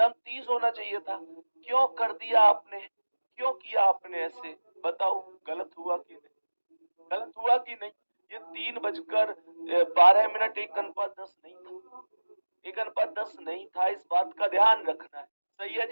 30 होना चाहिए था। क्यों कर दिया आपने, क्यों किया आपने ऐसे? बताओ, गलत हुआ कि नहीं? गलत हुआ कि नहीं? ये 3:12 1:10 नहीं था, 1:10 नहीं था, इस बात का ध्यान रखना है। सही है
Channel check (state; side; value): inverted; both; correlation -1.00